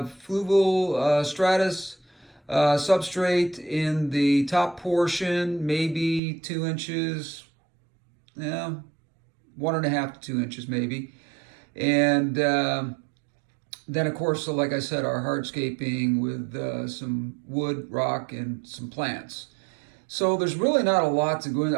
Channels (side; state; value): left; drops out; at 6.2 s